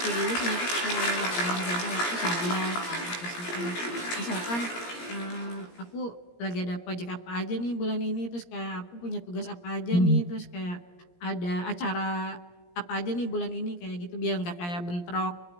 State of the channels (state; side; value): late; right; 17 ms